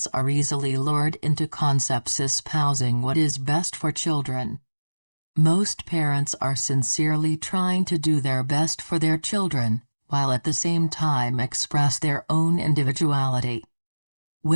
are easily lured into concepts espousing what is best for children. Most parents are sincerely trying to do their best for their children, while at the same time express their own individuality.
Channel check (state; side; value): inverted; both; correlation -1.00